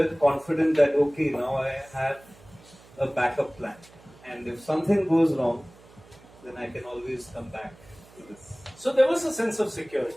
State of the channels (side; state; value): right; noise; hum, 24 dB below the sound